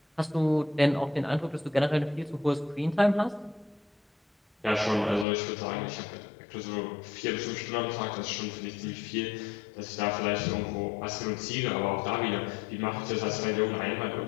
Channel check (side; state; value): right; drops out; at 5.2 s